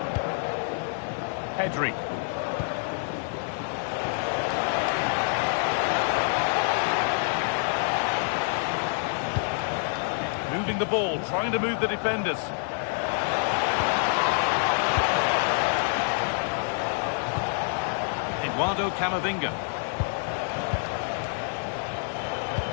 Pedri. Moving the ball, trying to move the defenders. Eduardo Camavinga.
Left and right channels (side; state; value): right; silent; 60 dB below the other